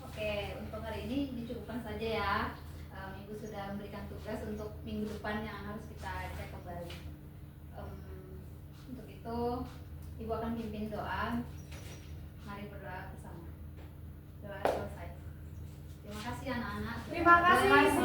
untuk hari ini dicukupkan saja ya. Ibu sudah memberikan tugas untuk minggu depan yang harus kita cek kembali. Untuk itu, Ibu akan pimpin doa. Mari berdoa bersama. Doa selesai. Terima kasih anak-anak. Terima kasih.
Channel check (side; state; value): both; identical; correlation 1.00